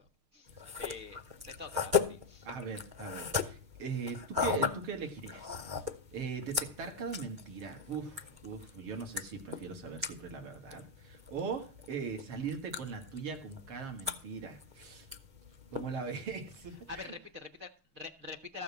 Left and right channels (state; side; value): late; left; 6.5 ms